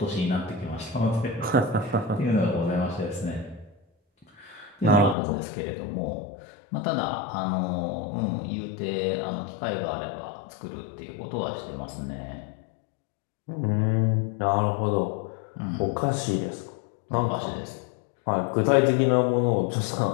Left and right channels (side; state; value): right; drops out; at 5.2 s